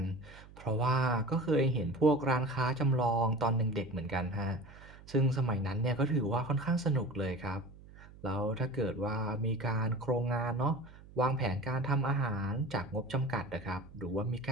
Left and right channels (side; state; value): right; noise; hum, 20 dB below the sound